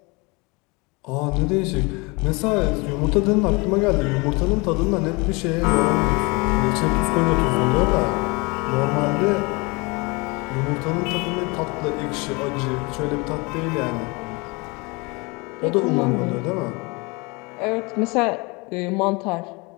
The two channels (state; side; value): quieter; right; 27.3 dB